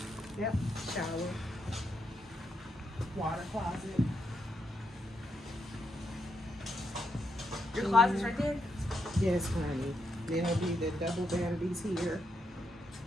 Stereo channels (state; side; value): normal; both; correlation 0.80